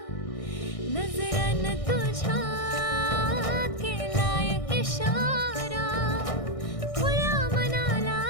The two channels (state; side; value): late; right; 1.6 ms